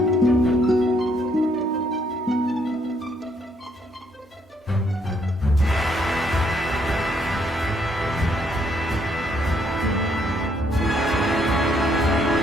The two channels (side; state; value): both; normal; correlation 0.70